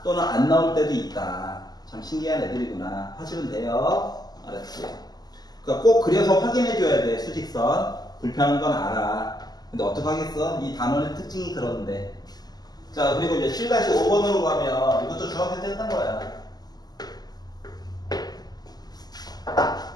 또는 안 나올 때도 있다. 참 신기한 애들이구나 하시면 돼요. 알았지? 그러니까 꼭 그려서 확인해 줘야 돼. 수직선 불편한 건 알아. 근데 어떡하겠어? 이 단원의 특징이 그런데. 자, 그리고 이제 7-5번으로 가면 이것도 중학생 때 했던 거야.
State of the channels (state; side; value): late; right; 0.20 ms